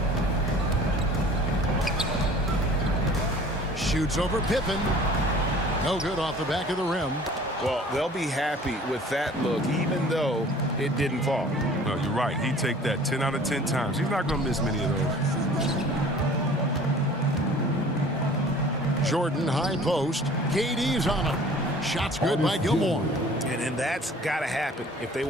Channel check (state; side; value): normal; both; correlation 0.48